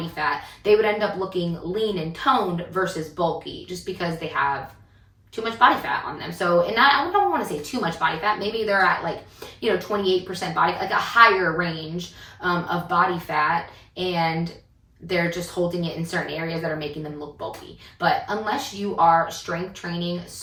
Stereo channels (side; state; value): both; identical; correlation 1.00